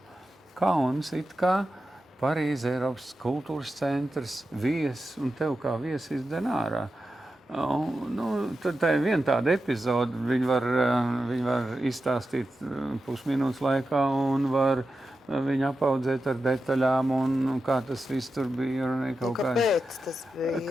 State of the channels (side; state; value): both; normal; correlation 0.91